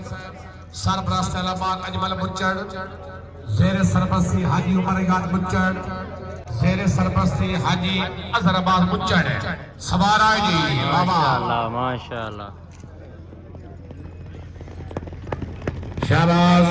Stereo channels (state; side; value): identical; both; correlation 1.00